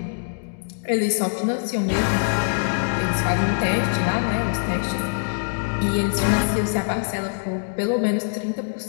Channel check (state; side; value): silent; right; digital silence